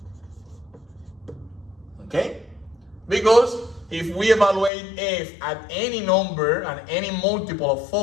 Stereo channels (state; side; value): drops out; right; at 4.7 s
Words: Okay? Because if we evaluate f at any number and any multiple of